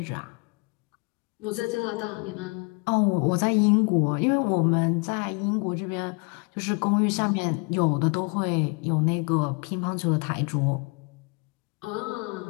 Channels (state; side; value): quieter; right; 31.8 dB